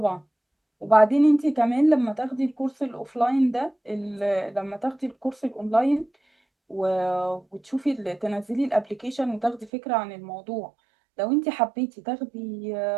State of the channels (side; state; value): left; drops out; at 9.7 s